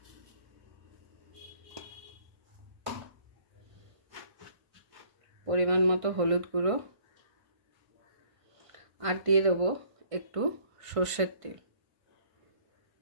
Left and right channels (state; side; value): late; left; 1.5 ms